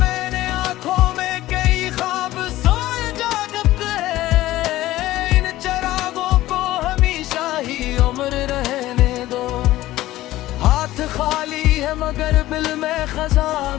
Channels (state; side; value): quieter; right; 15.9 dB